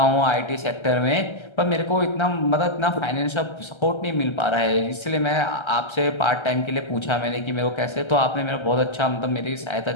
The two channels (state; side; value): late; right; 1.3 ms